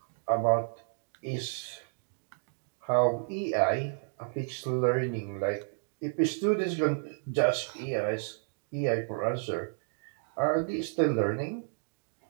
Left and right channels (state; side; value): silent; left; 57 dB below the other